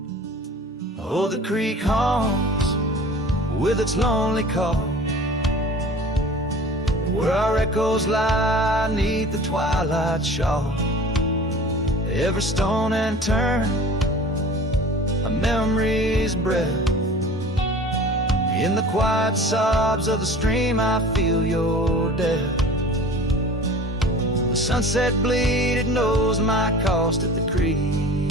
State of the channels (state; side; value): normal; both; correlation 0.42